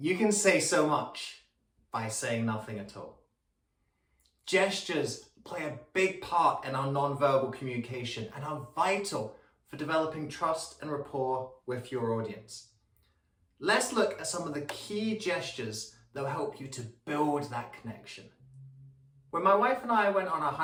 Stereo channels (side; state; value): both; identical; correlation 1.00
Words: can say so much by saying nothing at all. Gestures play a big part in our non-verbal communication and are vital for developing trust and rapport with your audience. Let's look at some of the key gestures that will help you to build that connection. When my wife and I went on our